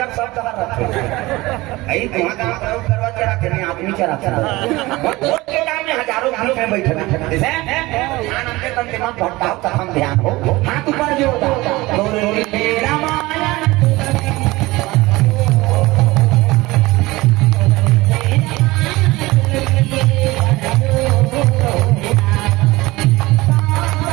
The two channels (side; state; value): left; quieter; 20.5 dB